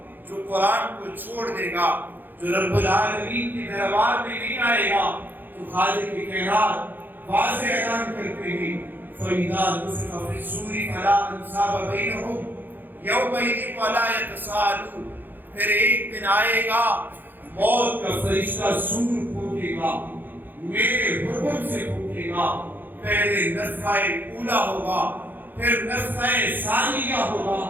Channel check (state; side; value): late; left; 0.090 ms